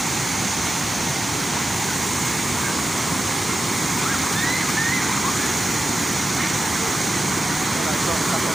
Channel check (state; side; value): normal; both; correlation 0.92